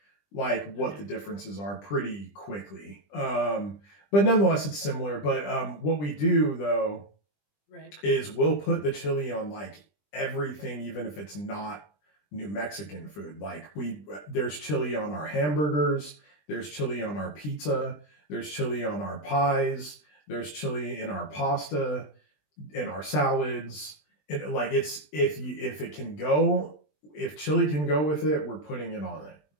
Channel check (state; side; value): late; right; 20 ms